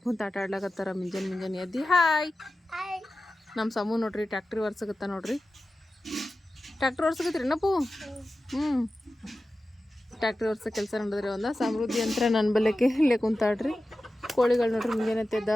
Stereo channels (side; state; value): both; normal; correlation 0.94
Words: ಕುಂತು ಆಟ ಆಡ್ಲಾಕತ್ತಾರ. ಮುಂಜಾನೆ ಎದ್ದು ಹಾಯ್ ನಮ್ಮ ಸಮೂ ನೋಡ್ರಿ ಟ್ಯಾಕ್ಟ್ರಿ ಒರ್ಸಕತ್ತ ನೋಡ್ರಿ. ಟ್ಯಾಕ್ಟ್ರಿ ಒರ್ಸಕತ್ರಿ ನಪ್ಪು. ಟ್ಯಾಕ್ಟ್ರಿ ಒರ್ಸೋ ಕೆಲಸ ನೋಡಿದ್ರಿ. ಸಮೃದ್ಧಿ ಅಂತ ನನ್ನ ಬಲ್ಲೆಕ್ಕೆ ಇಲ್ಲೇ ಕುಂತಾಡ್ರಿ. ಕೋಳಿಗಳು ನೋಡ್ರಿ ಮುಂಜಾನೆ ಎದ್ದ